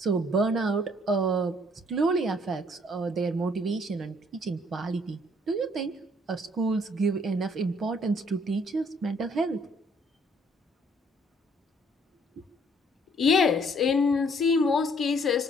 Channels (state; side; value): normal; both; correlation 0.63